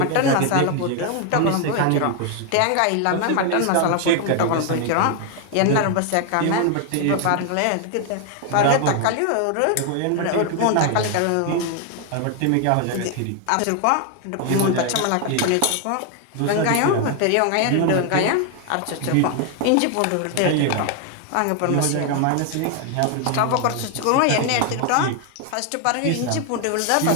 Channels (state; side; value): different; both; correlation 0.01